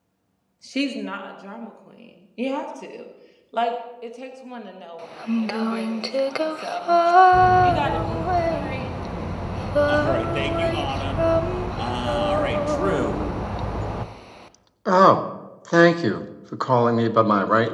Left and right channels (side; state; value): both; identical; correlation 1.00